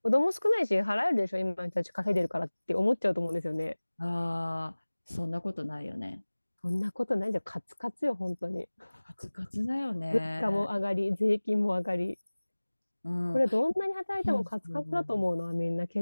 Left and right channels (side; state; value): both; inverted; correlation -1.00